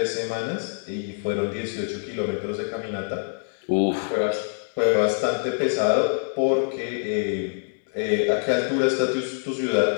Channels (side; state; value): right; silent; digital silence